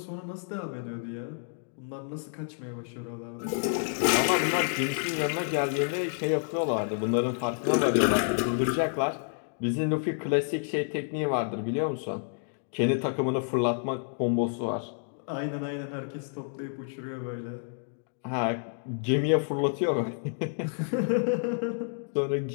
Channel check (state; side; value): silent; right; digital silence